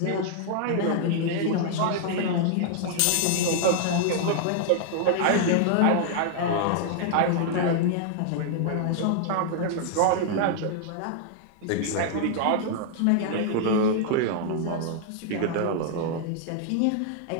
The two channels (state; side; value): different; both; correlation -0.01